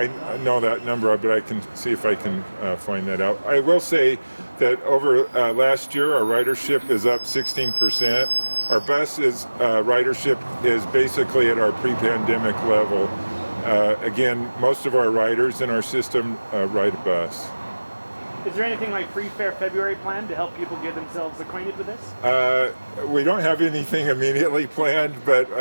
I know that number, but I can see if I can find that out. I will say that over last year, our ridership is up 16%. Our bus ridership is basically at our pre-pandemic level. Again, most of our riders in our system ride a bus. Is there anything like Free Fare February planned to help people get themselves acquainted with this? We don't have anything immediately planned, but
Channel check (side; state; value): both; inverted; correlation -1.00